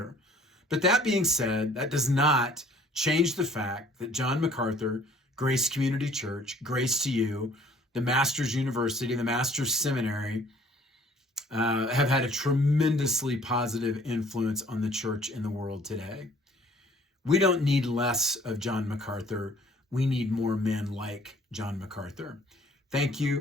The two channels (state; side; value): normal; both; correlation 0.56